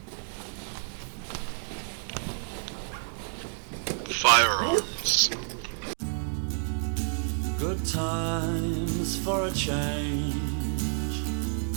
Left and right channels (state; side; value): silent; left; 58 dB below the other